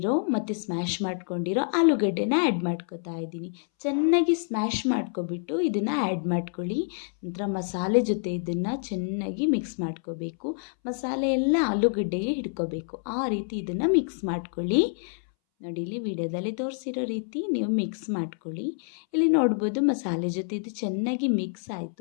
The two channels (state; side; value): silent; right; 60 dB below the other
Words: ಮತ್ತು ಸ್ಮ್ಯಾಶ್ ಮಾಡ್ಕೊಂಡಿರೋ ಆಲೂಗಡ್ಡೆನ ಆ್ಯಡ್ ಮಾಡ್ಕೊತಾ ಇದ್ದೀನಿ. ಚೆನ್ನಾಗಿ ಸ್ಮ್ಯಾಶ್ ಮಾಡ್ಕೊಬಿಟ್ಟು ಇದನ್ನು ಆ್ಯಡ್ ಮಾಡ್ಕೊಳ್ಳಿ. ನಂತರ ಮಸಾಲೆ ಜೊತೆ ಇದನ್ನು ಚೆನ್ನಾಗಿ ಮಿಕ್ಸ್ ಮಾಡ್ಕೋಬೇಕು. ಮಸಾಲೆ ಎಲ್ಲ ಆಲೂಗಡ್ಡೆಗೆ ಹಿಡ್ಕೋಬೇಕು, ಆ ರೀತಿ ಇದನ್ನು ಮಿಕ್ಸ್ ಮಾಡ್ಕೊಳ್ಳಿ. ನೋಡಿ, ಇಲ್ಲಿ ವಿಡಿಯೋದಲ್ಲಿ ತೋರಿಸಿರೋ ರೀತಿ ನೀವು ಮಿಕ್ಸ್ ಮಾಡ್ಕೊಳ್ಳಿ. ಇಲ್ಲಿ ನೋಡ್ಬೋದು ಮಸಾಲೆ ಜೊತೆ ಇದು ಚೆನ್ನಾಗಿ ಮಿಕ್ಸ್